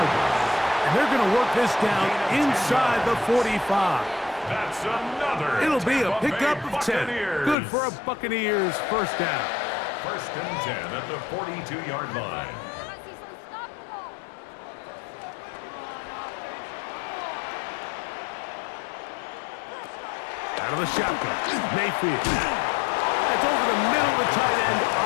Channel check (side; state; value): right; drops out; at 7.6 s